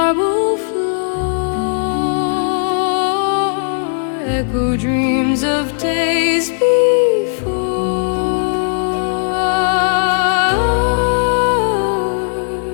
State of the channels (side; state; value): right; silent; 61 dB below the other